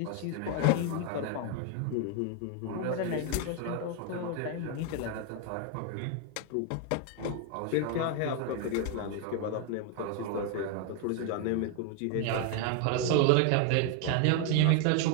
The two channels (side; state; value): both; different; correlation 0.01